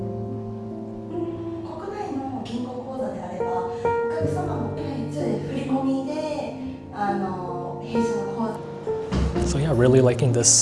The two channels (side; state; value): both; identical; correlation 1.00